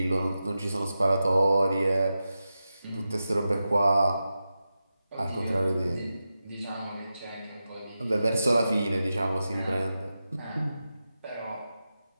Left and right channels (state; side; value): inverted; both; correlation -0.91